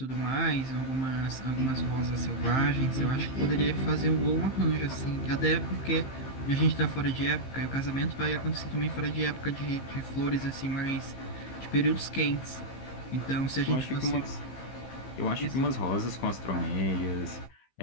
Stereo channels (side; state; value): right; late; 15 ms